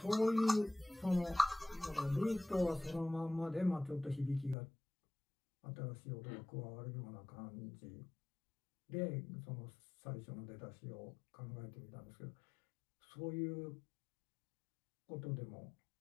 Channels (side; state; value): right; drops out; at 4.5 s